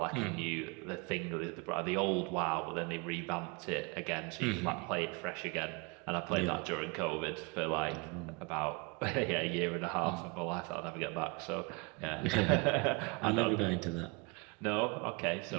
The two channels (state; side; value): quieter; left; 29.2 dB